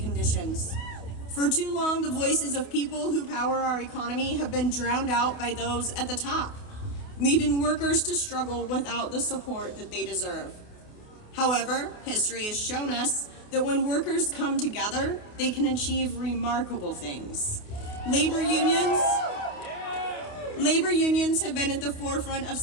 For too long, the voices of people who power our economy have been drowned out by those at the top, leaving workers to struggle without the support that they deserve. However, history has shown us that when workers come together, they can achieve remarkable things. Labor unions have been at the forefront of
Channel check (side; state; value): right; late; 28 ms